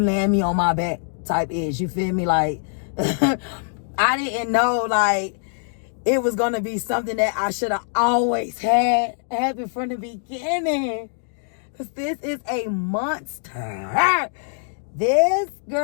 me on my back type ish. You feel me? Like, I didn't know, like, it was gonna be something that I should have always had happen from the beginning. Cause this is a monster. This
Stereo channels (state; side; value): silent; right; 63 dB below the other